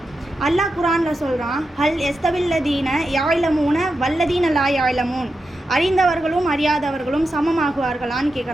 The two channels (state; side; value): normal; both; correlation 0.88